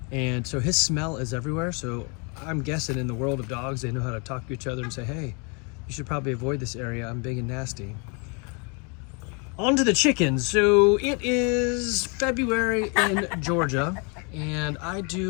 and so his smell is everywhere. So I'm guessing in the world of dogs, they know how to talk to each other and say, hey, you should probably avoid this area, I'm big and nasty. On to the chickens. So it is February in Georgia, and I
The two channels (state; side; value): quieter; right; 34.5 dB